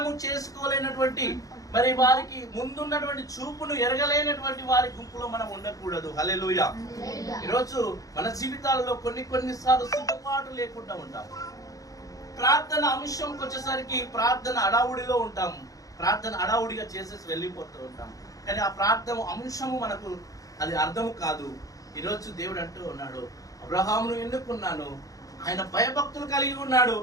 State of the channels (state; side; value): late; right; 0.17 ms